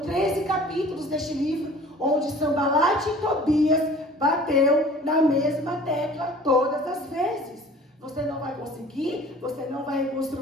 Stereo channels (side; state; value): both; normal; correlation 0.47